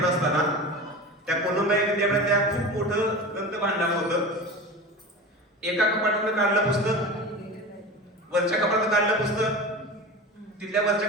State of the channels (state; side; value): normal; both; correlation 0.31